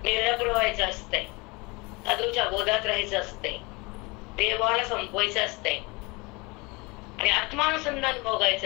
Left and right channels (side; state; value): right; quieter; 26.2 dB